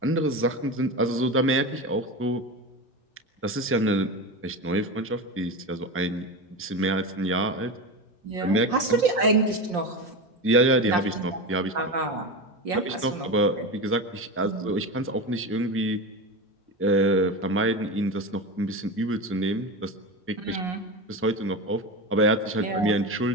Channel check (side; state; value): both; normal; correlation 0.22